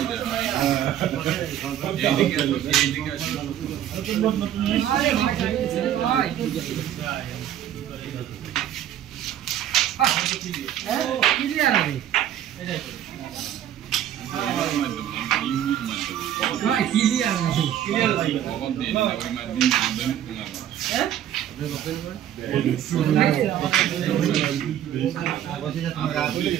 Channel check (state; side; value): quieter; left; 11.0 dB